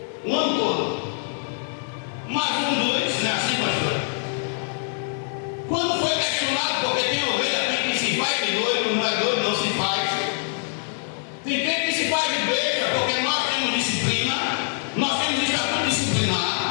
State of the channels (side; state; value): right; silent; digital silence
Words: O ano todo. Mais um, 2, não é assim, pastor? Quando foi questionado, porque tem ovelha, tem que se faz de doido, não é doido, não se faz. Tem gente que se faz de besta, porque nós temos disciplina, nós temos estatuto